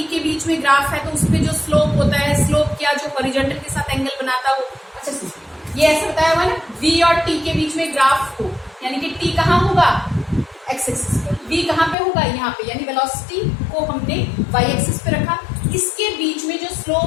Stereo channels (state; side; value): drops out; right; at 12.0 s